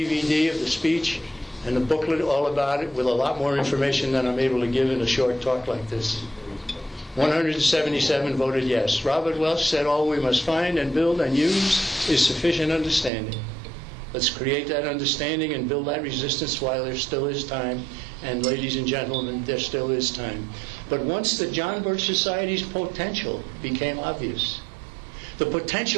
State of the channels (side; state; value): left; drops out; at 13.1 s